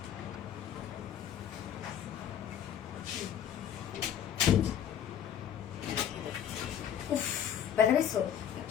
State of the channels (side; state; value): right; quieter; 9.4 dB